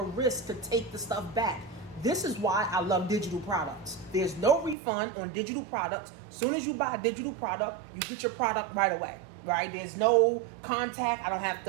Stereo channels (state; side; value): drops out; left; at 4.8 s